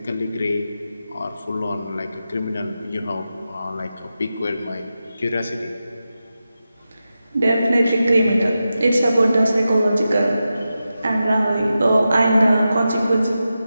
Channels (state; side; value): inverted; both; correlation -0.91